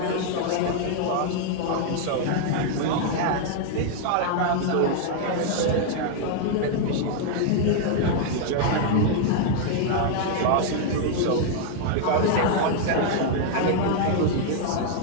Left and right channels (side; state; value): both; different; correlation 0.00